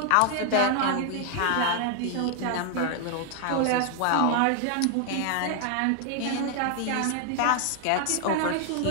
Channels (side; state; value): both; different; correlation 0.00